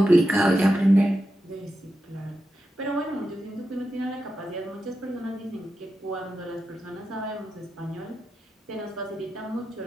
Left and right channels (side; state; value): both; normal; correlation 0.89